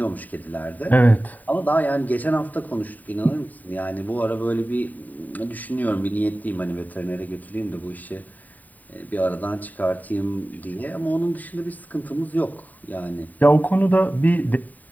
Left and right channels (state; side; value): late; right; 0.081 ms